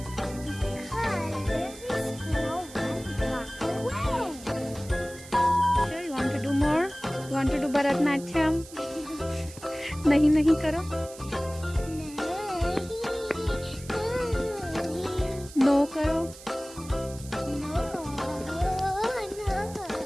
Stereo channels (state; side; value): noise; right; hiss, 17 dB below the sound